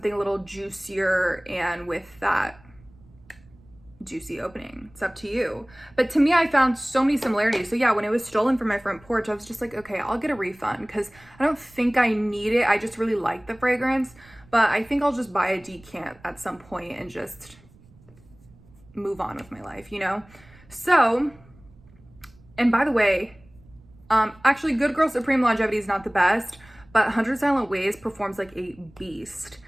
a little juicier and with that juicy opening? It's up to you. But to me, I found so many similarities. So yeah, when it was stolen from my front porch, I was just like, okay, I'll get a refund because I don't think I need it. I just really like the fragrance, but I think I'll just buy a decant at some point and just move on with my life, you know? So, and by the way, actually Good Girl Supreme longevity is not the best, but 100 Silent Ways performs like a beast.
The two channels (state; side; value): noise; right; rumble, 26 dB below the sound